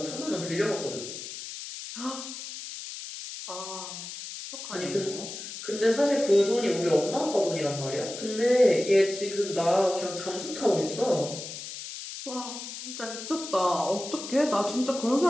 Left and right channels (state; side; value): noise; left; hiss, 9 dB below the sound